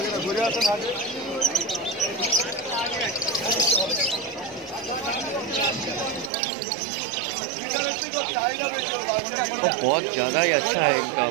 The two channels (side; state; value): left; drops out; at 6.3 s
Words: ঘুরে আসেন আগে। वो बहुत ज़्यादा ही अच्छा है इनका